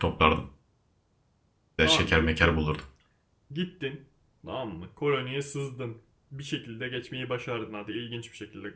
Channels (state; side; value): identical; both; correlation 1.00